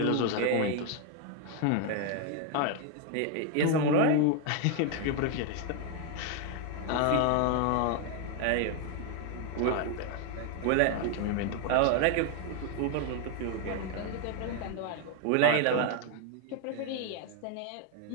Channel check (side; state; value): both; different; correlation 0.01